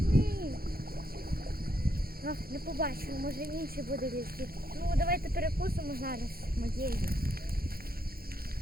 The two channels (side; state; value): left; late; 0.44 ms